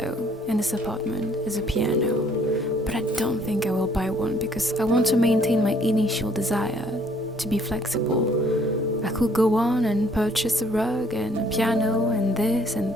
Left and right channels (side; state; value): both; normal; correlation 0.62